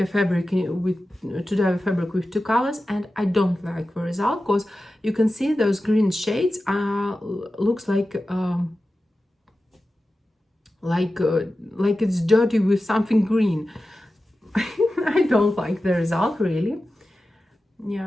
fabric to dye a fabric with 2 colors, and I don't like the result, because you can see those green shades looks like it's dirty with something green. I don't like the result, really.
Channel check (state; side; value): normal; both; correlation 0.94